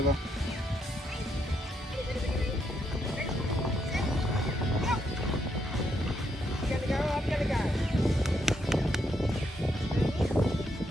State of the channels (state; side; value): normal; both; correlation 0.77